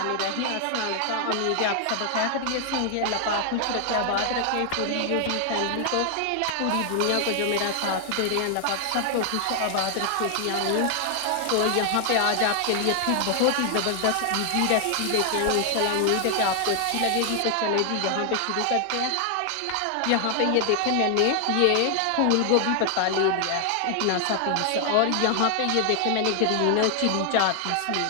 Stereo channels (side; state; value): both; different; correlation 0.00